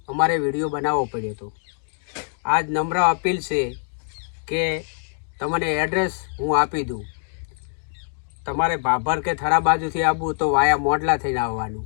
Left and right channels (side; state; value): right; silent; 63 dB below the other